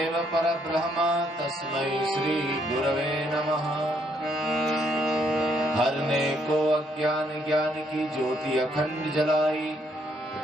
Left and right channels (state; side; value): normal; both; correlation 0.71